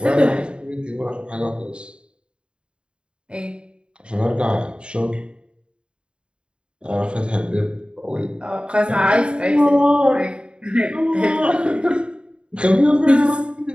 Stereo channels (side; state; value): left; late; 0.053 ms